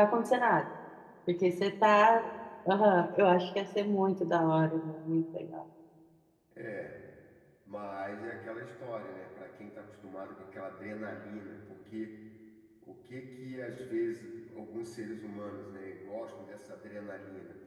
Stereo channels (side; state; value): both; identical; correlation 1.00